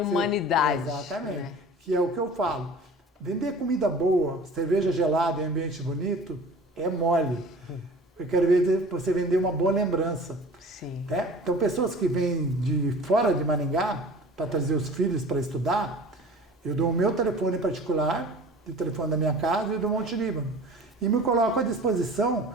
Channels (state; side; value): normal; both; correlation 0.43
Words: Exatamente. Né? Que é o que eu falo. Vender comida boa, cerveja gelada em ambiente bonito, é mole. Eu quero ver você vender uma boa lembrança. Sim. Né? Então, pessoas que vêm de fora de Maringá para trazer os filhos para estudar, eu dou o meu telefone particular, o telefone da minha casa e do Monte Líbano. E me coloco à disposição